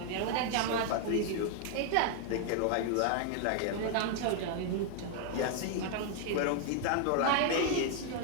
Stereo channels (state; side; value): different; both; correlation 0.00